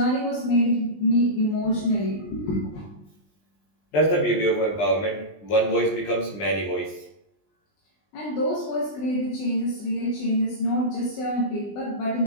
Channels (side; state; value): right; late; 20 ms